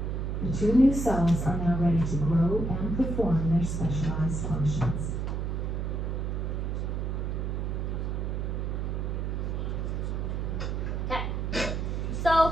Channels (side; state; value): right; noise; hum, 1 dB below the sound